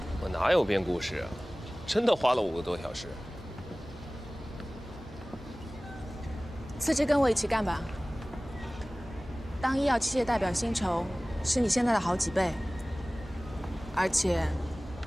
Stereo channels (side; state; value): both; normal; correlation 0.98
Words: 我哪有编故事啊？真的花了5个多小时。辞职跟我一起干吧。当医药器械代表薪酬是你现在的好几倍，而且